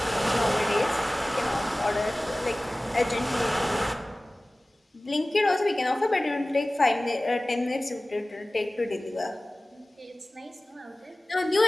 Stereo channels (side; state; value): both; normal; correlation 0.98